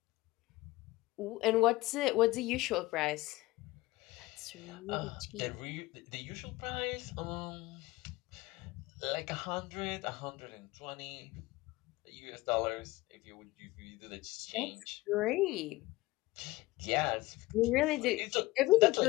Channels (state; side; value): quieter; right; 19.9 dB